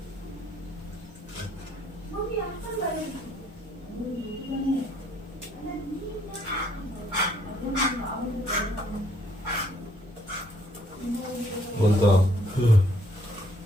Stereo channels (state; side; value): normal; both; correlation 0.66